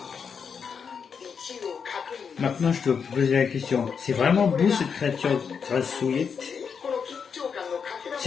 Maintenant, je dois te poser la question. C'est vraiment beau cette créature grassouillette?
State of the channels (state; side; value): quieter; right; 6.4 dB